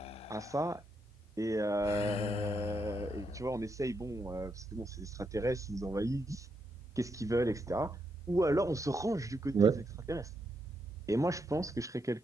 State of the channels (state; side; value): normal; both; correlation 0.81